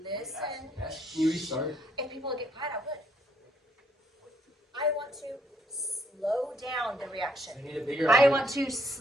you restart? If people would get quiet, I would. I want to slow down the reaction. I need a bigger I object. want to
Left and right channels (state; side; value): normal; both; correlation 0.68